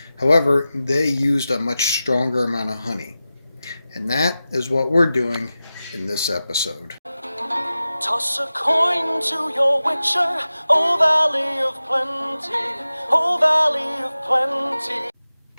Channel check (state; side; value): inverted; both; correlation -0.94